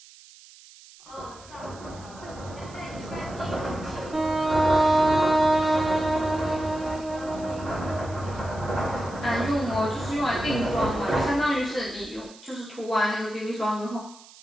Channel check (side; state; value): right; noise; hiss, 22 dB below the sound